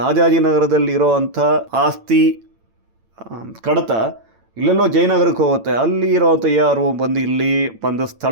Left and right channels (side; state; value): left; late; 8.9 ms